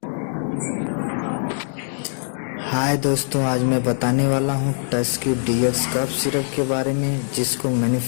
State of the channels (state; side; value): silent; right; digital silence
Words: हाय दोस्तों, आज मैं बताने वाला हूं टस्क्यू DX कफ सिरप के बारे में, जिसको